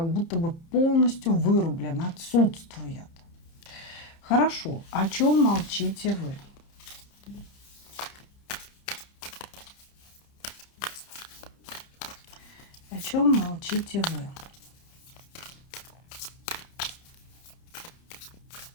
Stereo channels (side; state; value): right; late; 30 ms